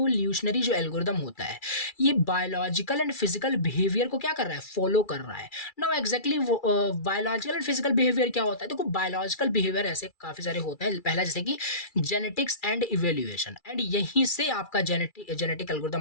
जो एल्गोरिथम होता है ये बायोलॉजिकल एंड फिजिकल बिहेवियर को क्या कर रहा है, फॉलो कर रहा है। Now exactly biological and physical behaviour क्या होता है, देखो बायोलॉजिकल बिहेवियर ऐसे काफी सारे होते हैं। पहला जैसे कि जेनेटिक्स एंड इवोल्यूशन, एंड यहीं से आपका जेनेटिक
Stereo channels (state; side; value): late; right; 2.3 ms